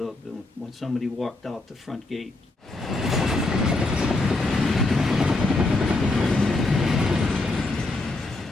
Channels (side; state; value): right; quieter; 3.1 dB